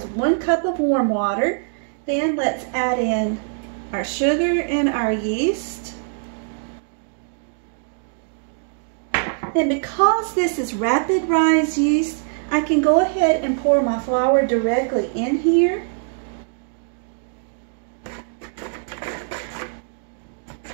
1 cup of warm water. Then let's add in our sugar and our yeast. Then because this is rapid rise yeast, I can go ahead and pour my flour directly in here.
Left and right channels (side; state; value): left; silent; digital silence